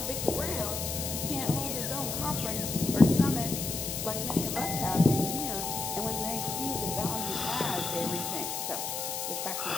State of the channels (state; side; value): noise; left; hiss, 3 dB below the sound